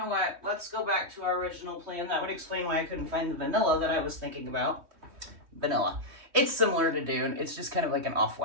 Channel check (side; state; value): left; late; 3.2 ms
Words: what? Let's go back to our original plan. That would explain why I couldn't find the vanilla that I was thinking about. Vanilla. It's similar to Dune. It's just kind of like an